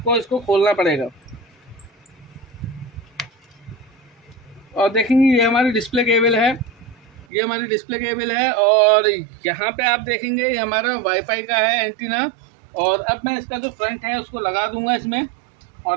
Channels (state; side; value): drops out; left; at 7.2 s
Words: इसको खोलना पड़ेगा। और देखेंगे ये हमारी डिस्प्ले केबल है, ये हमारी डिस्प्ले केबल है। और यहाँ पे आप देखेंगे ये हमारा वाईफाई का है एंटीना। और अब मैं इसका जो फ्रंट है उसको लगा दूंगा इसमें।